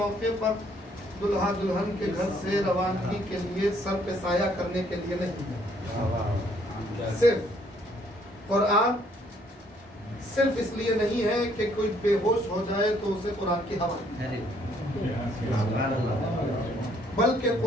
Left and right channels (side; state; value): both; normal; correlation 0.66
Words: پر دلہا دلہن کے گھر سے روانگی کے لیے سر پہ سایہ کرنے کے لیے نہیں ہے. صرف قرآن صرف اس لیے نہیں ہے کہ کوئی بے ہوش ہو جائے تو اسے قرآن کی ہوا، بلکہ